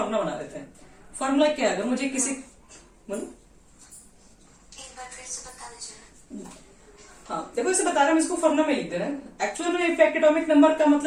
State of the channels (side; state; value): both; identical; correlation 1.00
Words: बना देते हैं। फॉर्मूला क्या है, अगर मुझे किसी बोलो, हाँ देखो इसे बता रहा हूं, इसको फॉर्मूला में लिख दे रहे हैं। एक्चुअल में इफेक्ट एटॉमिक नंबर का